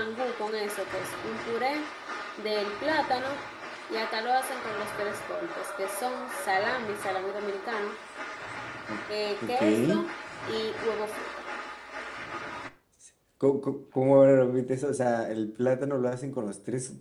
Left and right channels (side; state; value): both; identical; correlation 1.00